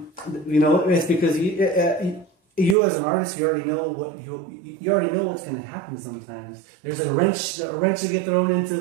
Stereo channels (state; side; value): drops out; left; at 2.8 s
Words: You know, it's because you as an artist, you already know what you already know what's going to happen. Sometimes there's a wrench to get thrown into